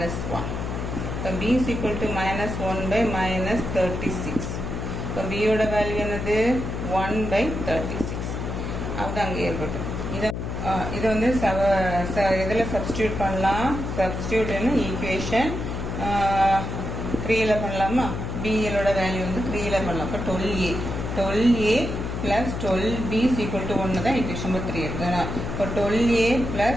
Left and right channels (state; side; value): noise; left; hum, 4 dB below the sound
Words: 1. இப்போ b is equal to minus 1 by minus 36. இப்போ b யோட வேல்யூ என்னது? 1 by 36. அது அங்கே ஏற்பட்டு இதை வந்து இதில் சப்ஸ்டியூட் பண்ணலாம். சப்ஸ்டியூட்னு ஈக்குவேஷன் 3ல் பண்ணலாமா? பிஎலோட வேல்யூ வந்து 3ல் பண்ணலாம். இப்போ 12a plus 12b is equal to 1 தான் ஈக்குவேஷன் நம்பர் 3 இருக்குதுன்னா. இப்போ 12a plus